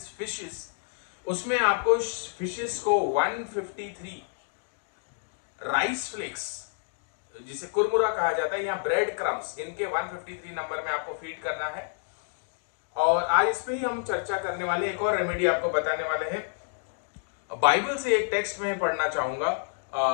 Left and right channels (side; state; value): right; silent; digital silence